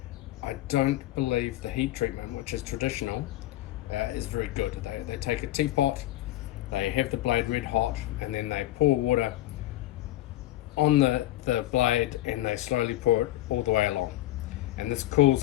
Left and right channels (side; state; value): right; quieter; 15.4 dB